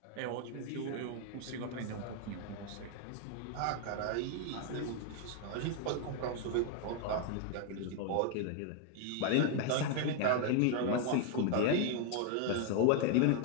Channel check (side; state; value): both; different; correlation 0.00